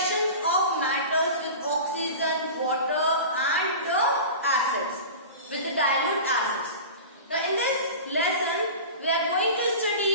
of metals with oxygen, water and the acids, with the dilute acids. Now in this lesson we are going to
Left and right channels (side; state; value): both; inverted; correlation -0.33